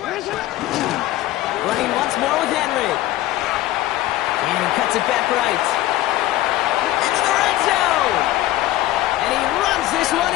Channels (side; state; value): right; quieter; 15.5 dB